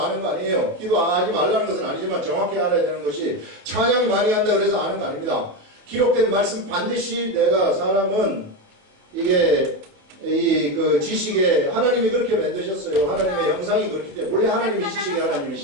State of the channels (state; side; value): late; left; 27 ms